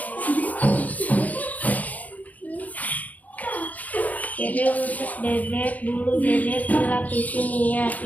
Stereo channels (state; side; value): late; right; 0.077 ms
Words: Ciri khusus bebek. Bulu bebek dilapisi minyak